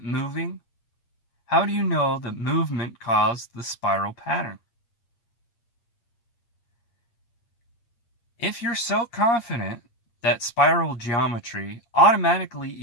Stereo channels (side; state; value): right; late; 8.6 ms